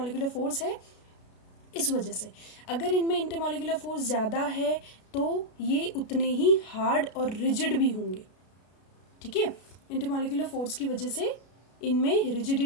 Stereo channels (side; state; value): right; late; 33 ms